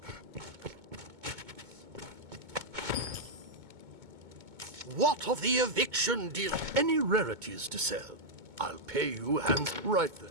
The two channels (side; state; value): left; late; 2.2 ms